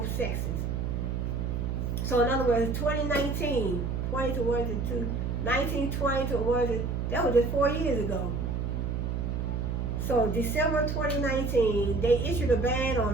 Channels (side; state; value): right; noise; hum, 1 dB below the sound